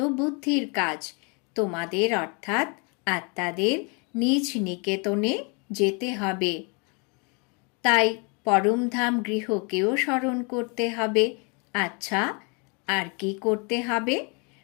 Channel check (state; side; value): quieter; right; 33.5 dB